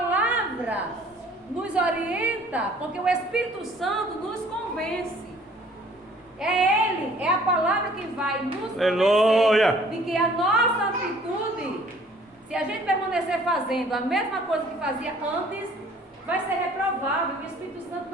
nos orienta, porque o Espírito Santo nos convence. É Ele, é a palavra que vai nos convencer de que a nossa atitude, se a gente permanecer fazendo a mesma coisa que fazia antes, vai ser reprovável. O Espírito Santo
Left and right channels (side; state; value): both; normal; correlation 0.55